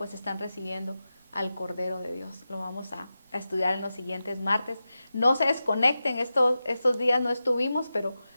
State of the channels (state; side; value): inverted; both; correlation -0.92